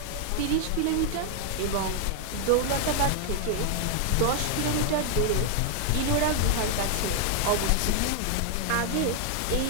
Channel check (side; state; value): both; different; correlation 0.00